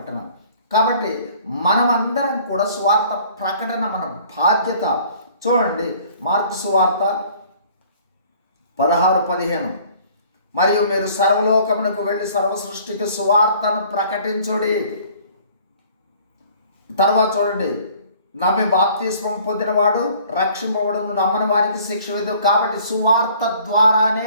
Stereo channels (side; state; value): both; inverted; correlation -0.54